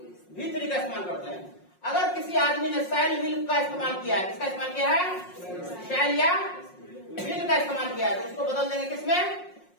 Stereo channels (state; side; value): late; right; 5.5 ms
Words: V3 का इस्तेमाल करते हैं। अगर किसी आदमी ने शैल विल का इस्तेमाल किया है, किसका इस्तेमाल किया है, शैल या विल का इस्तेमाल किया है, तो उसको बदल देंगे किसमें,